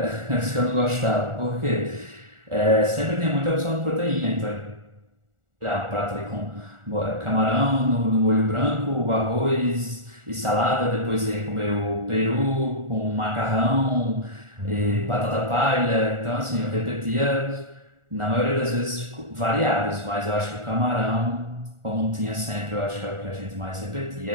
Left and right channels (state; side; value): late; left; 1.4 ms